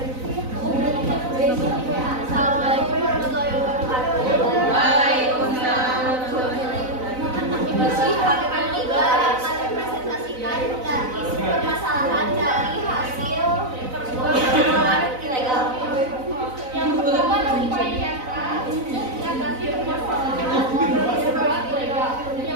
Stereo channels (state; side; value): late; left; 4.0 ms